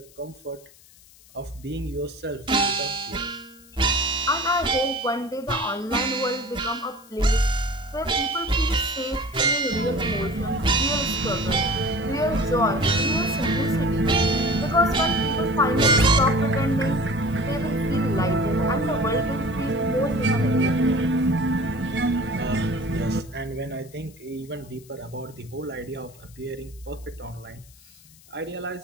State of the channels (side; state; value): left; noise; hiss, 25 dB below the sound